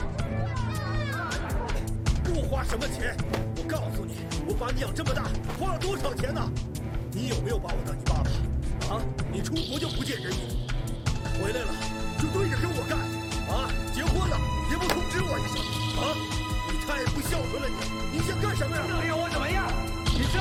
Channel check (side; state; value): both; identical; correlation 1.00